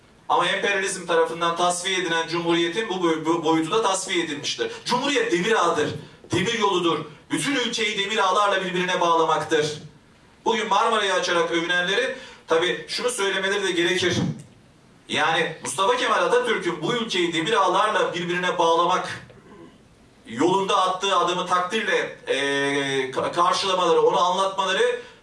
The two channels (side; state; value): both; identical; correlation 1.00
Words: Ama emperyalizm tarafından tasfiye edilen Cumhuriyet'in bu boyutu da tasfiye edilmiştir. Cumhuriyet demir ağıdır, demir yoludur. Bütün ülkeyi demir ağlarla birbirine bağlamaktır. Bugün Marmara'yı açarak övünenlerin tabii şunu söylemeleri de gerekir. Yani Mustafa Kemal Atatürk'ün bu ülkeyi demir ağlarla birbirine bağlamak yolunda attığı adımı takdirle karşılamaları, onu anlatmaları